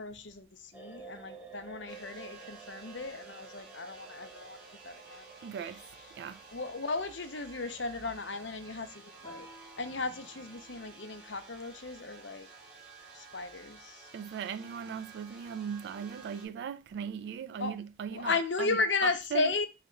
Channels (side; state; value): both; normal; correlation -0.15